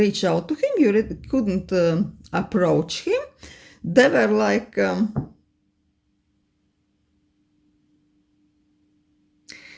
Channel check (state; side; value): identical; both; correlation 1.00